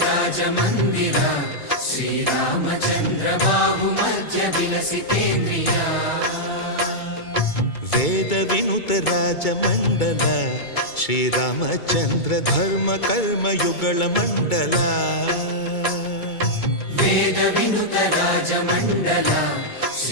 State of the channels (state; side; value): late; right; 2.3 ms